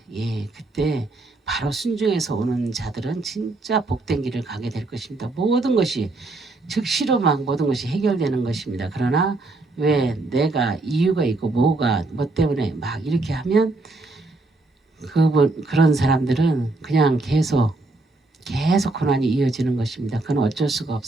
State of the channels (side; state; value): left; quieter; 3.1 dB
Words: 예, 그때 바로 순종해서 오는 자들은 진짜 복된 길을 가게 될 것입니다. 모든 것이 즉시로 막 모든 것이 해결되는 것입니다. 그러나 왜 내가 이유가 있고 뭐 때문에 막 이렇게 하면 그런 사람들은 그냥 계속 고난이 이어지는 것입니다. 그건 어쩔 수가